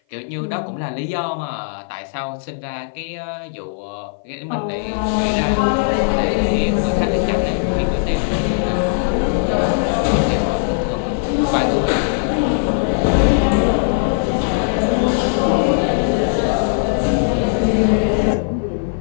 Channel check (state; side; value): silent; right; 56 dB below the other